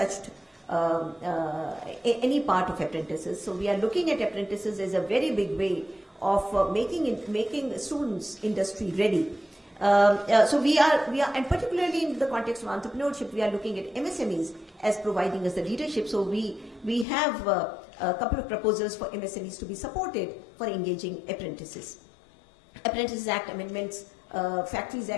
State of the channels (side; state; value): right; drops out; at 17.1 s